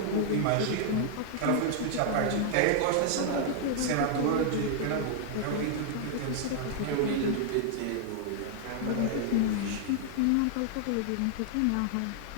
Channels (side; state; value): both; different; correlation 0.00